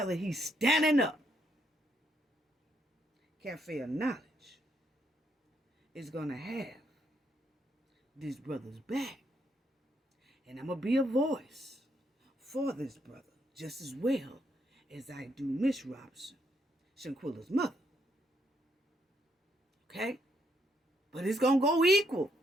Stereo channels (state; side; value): normal; both; correlation 0.75